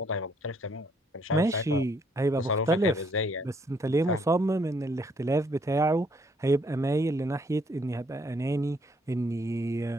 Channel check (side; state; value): both; normal; correlation 0.68